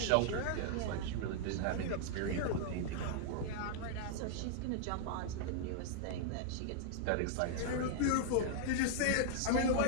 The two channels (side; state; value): both; different; correlation -0.01